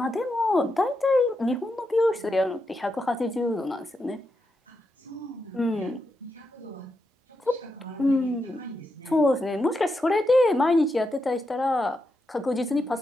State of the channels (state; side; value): normal; both; correlation 0.85